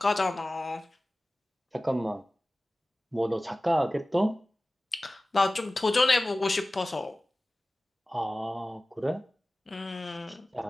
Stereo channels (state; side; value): normal; both; correlation 0.97